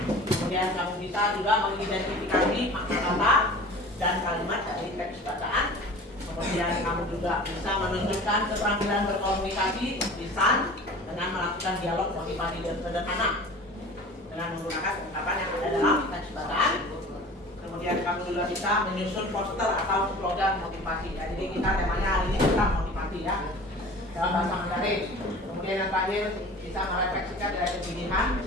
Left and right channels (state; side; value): normal; both; correlation 0.41